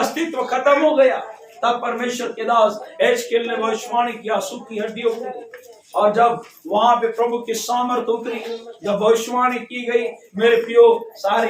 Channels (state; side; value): identical; both; correlation 1.00